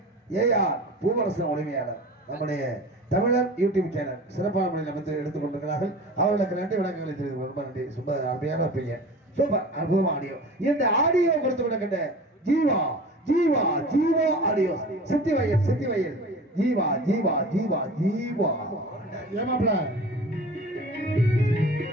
ஏஆர் பூவரசன் உரிமையாளர் நம்முடைய தமிழர் யூடியூப் சேனல் சிறப்பான முறையில் அமைத்து எடுத்துக் கொண்டிருக்கிறார்கள். அவர்களுக்கு நன்றி வணக்கங்களை தெரிவித்து ரொம்ப நன்றி. ரொம்ப அருமையான வைப்பீங்க, சூப்பர், அற்புதமா ஆடியோ. இந்த ஆடியோ கொடுத்து விடுகின்ற ஜீவா ஜீவா ஜீவா ஆடியோ சித்தி வயல் ஜீவா ஜீவா ஜீவா ஜீவா ஏமாப்ல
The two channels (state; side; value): normal; both; correlation 0.38